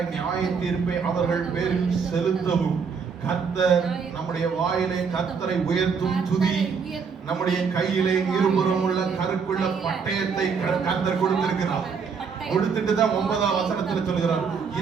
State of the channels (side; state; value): left; quieter; 5.8 dB